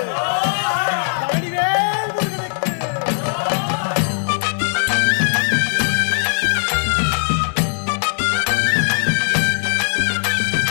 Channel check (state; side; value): silent; right; digital silence